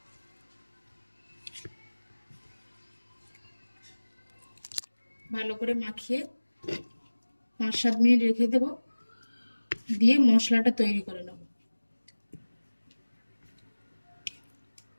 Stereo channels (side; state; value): both; inverted; correlation -1.00